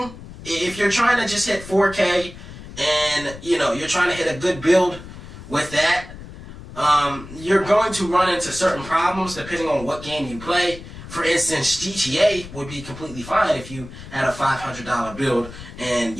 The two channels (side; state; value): left; noise; rumble, 14 dB below the sound